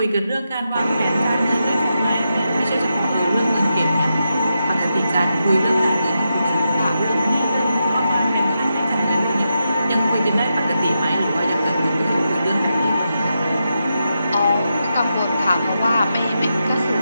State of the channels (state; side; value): inverted; both; correlation -0.86